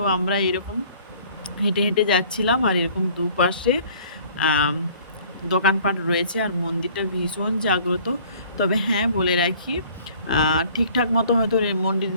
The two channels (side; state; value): both; inverted; correlation -0.53